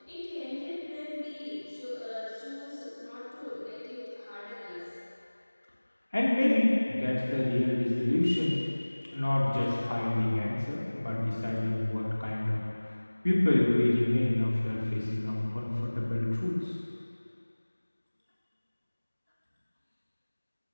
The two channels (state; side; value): inverted; both; correlation -1.00